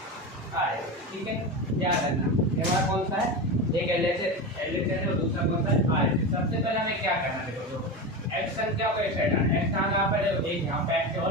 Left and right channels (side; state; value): both; normal; correlation 0.21